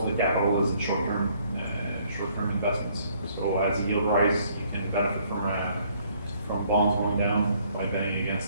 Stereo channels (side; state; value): both; inverted; correlation -0.64